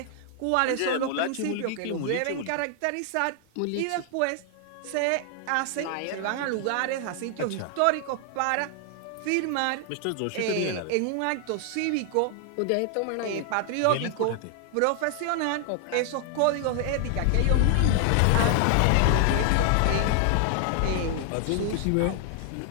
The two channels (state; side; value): different; both; correlation 0.00